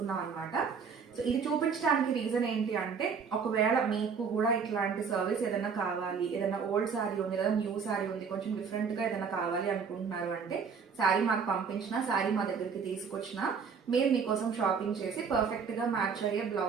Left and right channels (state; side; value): quieter; left; 6.0 dB